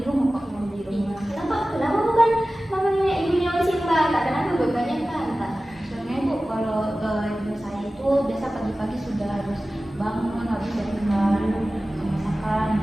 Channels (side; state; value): both; normal; correlation 0.96